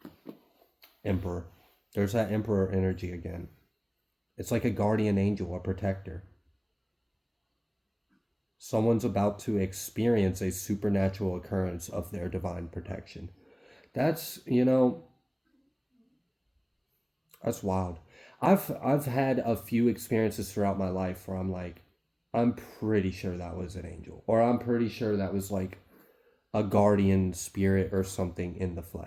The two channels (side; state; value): both; identical; correlation 1.00